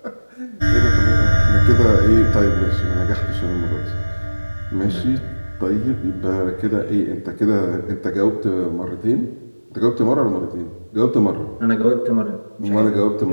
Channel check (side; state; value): both; inverted; correlation -1.00